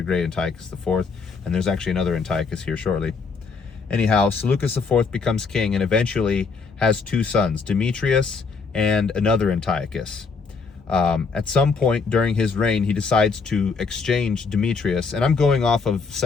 Great, Antiochus IV, and there's actually another Antiochus here shortly. Anyhow, Seleucus IV becomes king and eventually has two sons, Demetrius and another Antiochus. At some point during his reign, he decides to exchange Demetrius. And I'm going off of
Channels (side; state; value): right; quieter; 4.8 dB